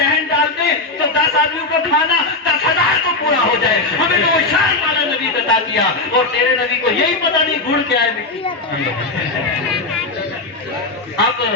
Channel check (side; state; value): right; quieter; 3.2 dB